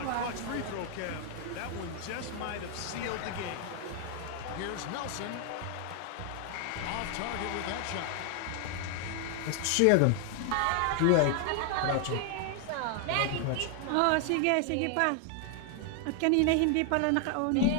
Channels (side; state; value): both; different; correlation 0.00